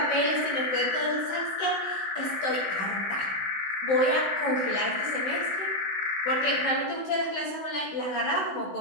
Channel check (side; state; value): right; late; 16 ms